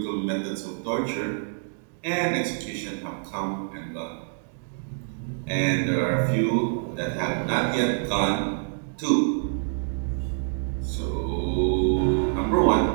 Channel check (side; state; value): left; silent; digital silence